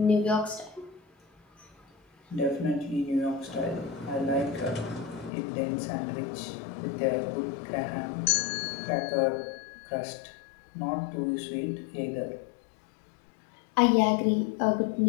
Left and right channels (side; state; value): right; drops out; at 5.3 s